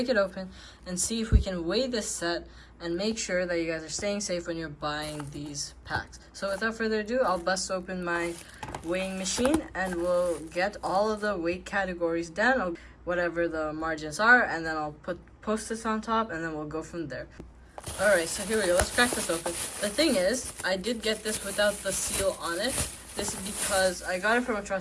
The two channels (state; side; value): identical; both; correlation 1.00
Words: it open and see if we can weigh this set and make sure that you guys are staying safe when you're buying these packs. So without further ado, I'll bust open my weighing machine and we'll get all of the weight categories down, whatever the margins are, and then I'll post this on top and then we'll go from there. Alright, so here we go. Let's crack this open. The thing is, I did get this without the seal on it. This is because I got it from a